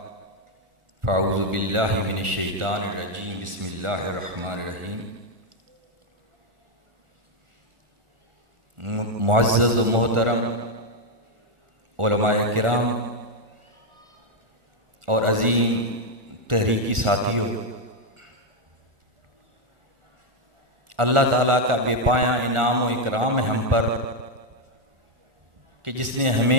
फ़अऊज़ु बिल्लाहि मिनश शैतानिर रजीम, बिस्मिल्लाहिर रहमानिर रहीम। मुअज़्ज़ज़ व मोहतरम उलमाए किराम और अज़ीम तहरीकी साथियों, अल्लाह ताला का बेपाया इनाम व इकराम है हम पर कि जिसने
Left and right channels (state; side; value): late; left; 1.4 ms